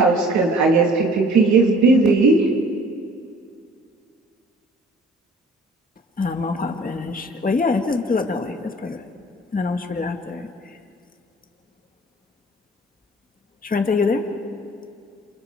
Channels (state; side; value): normal; both; correlation 0.51